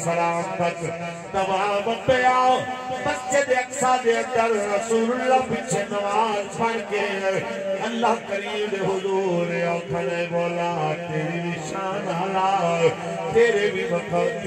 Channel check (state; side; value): identical; both; correlation 1.00